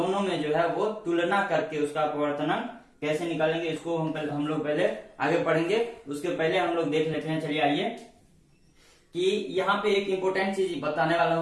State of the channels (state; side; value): identical; both; correlation 1.00